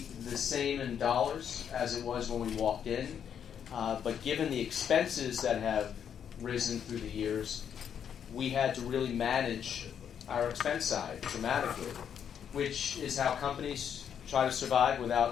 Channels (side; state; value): right; quieter; 8.4 dB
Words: the same in dollars as it was when we walked in, but given the expenses that have risen through the years, we had to really manage our expense side dramatically, which is how companies try to survive